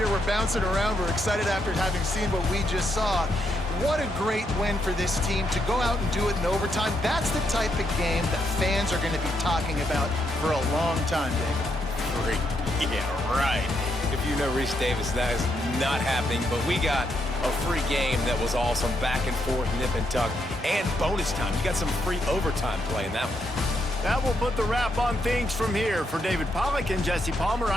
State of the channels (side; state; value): both; normal; correlation 0.78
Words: we're bouncing around, we're excited after having seen what we just saw. What a great win for this team to go out and do it in overtime. That's the type of game that fans are going to be talking about for a long time, David. Free. Yeah, right. If you know Reese Davis, that is not happening, but we got a free game that was awesome. Back and forth, nip and tuck, and bonus time. You got some free overtime play in that one. That will put the wrap on things from here. For David Pollack and Jesse Palmer,